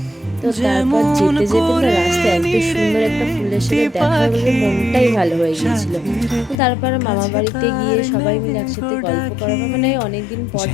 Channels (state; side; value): drops out; right; at 6.6 s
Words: তো তারপর যেতে যেতে তো রাস্তায় এত সুন্দর একটা ফুলের সাথে দেখা হলে মনটাই ভালো হয়ে গিয়েছিল। তারপর মামা বাড়িতে গিয়ে সবাই মিলে একসাথে গল্প করা, মানে অনেকদিন পর